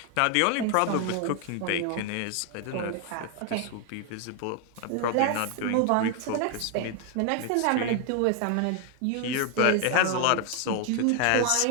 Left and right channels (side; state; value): both; different; correlation 0.01